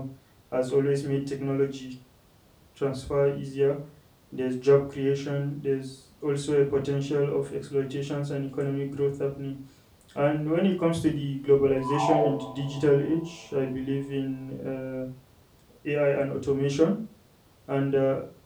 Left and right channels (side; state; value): both; identical; correlation 1.00